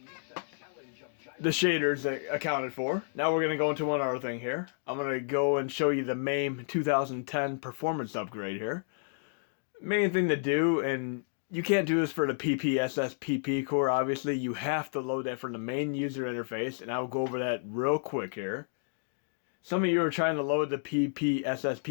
shaders accounted for. Now we're going to go into one other thing here. I'm going to go and show you the MAME 2010 performance upgrade here. Main thing to do, and you can't do this for the PPSSPP core, obviously. You have to load that from the main user interface, and I'll go over that real quick here. Some of you are trying to load the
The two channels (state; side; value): silent; right; digital silence